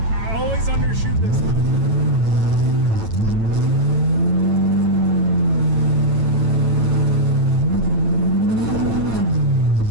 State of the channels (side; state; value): left; late; 9.0 ms